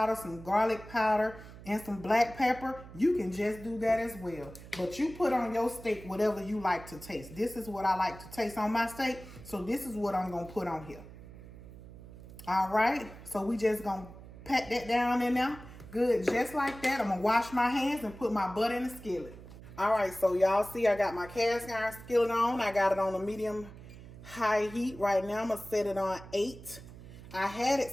some garlic powder, and some black pepper, you can just do that as well. But you put on your steak whatever you like to taste. This is what I like to taste on my steak. So this is what I'm going to put on here. All right. So we just going to pat that down in there. Good, just like that. I'm going to wash my hands and put my butter in the skillet. All right, so y'all see I got my cast iron skillet on. I got it on a medium high heat. Right now, I'm going to set it on 8. I had it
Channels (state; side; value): noise; right; hum, 16 dB below the sound